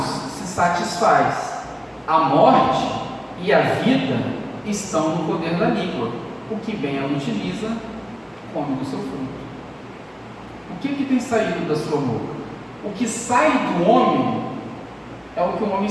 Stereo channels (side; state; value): both; identical; correlation 1.00